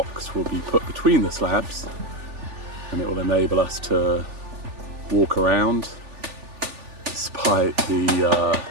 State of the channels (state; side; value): late; left; 3.4 ms